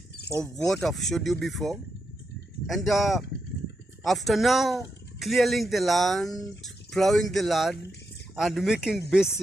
of what I've showed you before. And after now clearing the land, plowing the land, and making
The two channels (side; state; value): both; normal; correlation 0.85